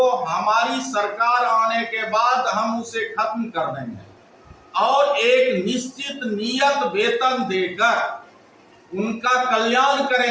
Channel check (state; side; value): identical; both; correlation 1.00